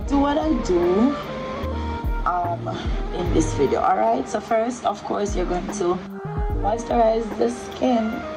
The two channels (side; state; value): both; identical; correlation 1.00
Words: do what I do in this video. All right, so first, of course, you're going to moisturize the skin